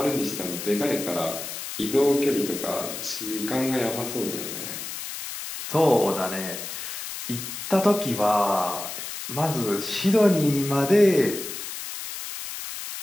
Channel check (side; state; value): left; noise; hiss, 8 dB below the sound